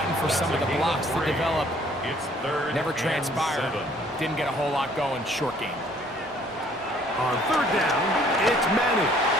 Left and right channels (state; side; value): normal; both; correlation 0.59